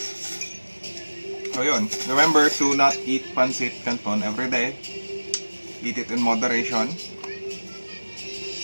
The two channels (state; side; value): inverted; both; correlation -1.00